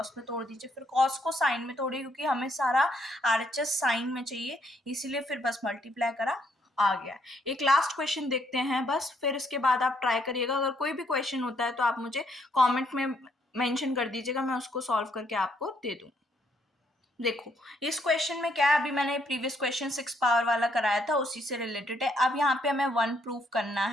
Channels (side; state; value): both; normal; correlation 0.71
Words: में तोड़ दीजिए, फिर कॉस को साइन में तोड़िए, क्योंकि हमें सारा RHS साइन में चाहिए, इसीलिए फिर बस मल्टीप्लाई करा, आ गया। एक लास्ट क्वेश्चन देखते हैं बस, फिर इसके बाद आप ट्राई करिएगा। अगर कोई भी क्वेश्चन होता है तो आप मुझे कॉमेंट में मेंशन कर दीजिएगा, मैं उसको सॉल्व करके आपको दे दूँ। देखो इस क्वेश्चन में क्या है, अभी मैंने प्रीवियस क्वेश्चन 6 पावर वाला कराया था, उसी से रिलेटेड है। अब यहाँ पे हमें 1 प्रूव करना